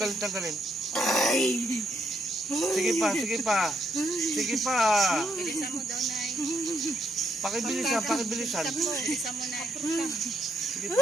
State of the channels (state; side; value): normal; both; correlation 0.76